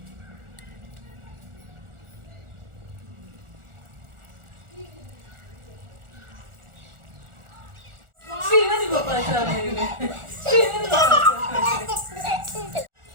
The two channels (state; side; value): late; left; 1.4 ms